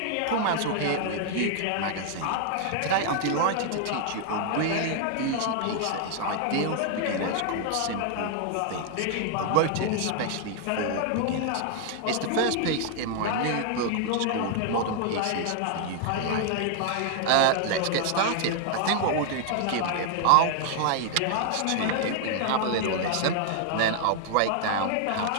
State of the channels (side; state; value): both; different; correlation 0.00